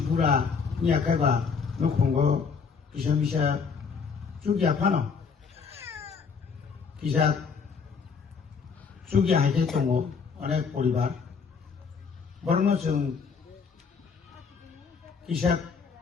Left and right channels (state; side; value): quieter; right; 5.6 dB